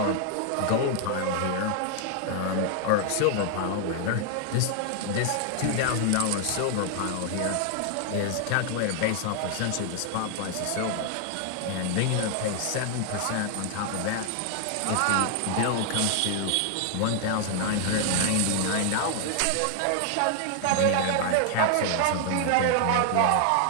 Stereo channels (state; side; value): different; both; correlation 0.00